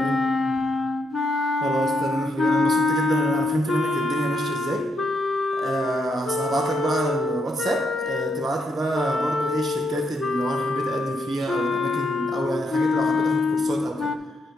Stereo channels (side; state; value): both; normal; correlation 0.78